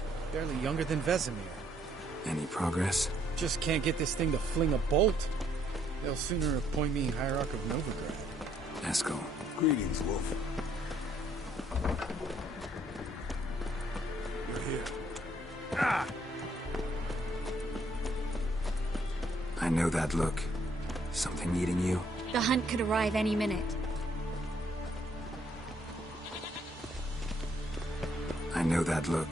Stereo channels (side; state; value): both; normal; correlation 0.69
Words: Barely younger than Vesemir. Any progress? Just can't get this thing to fling a bolt. They'll sooner appoint me Hierarch of Novigrad. Eskel. Greetings, Wolf. You're here. Ah! I know that look. Something eating you? The hunt could arrive any minute. I know that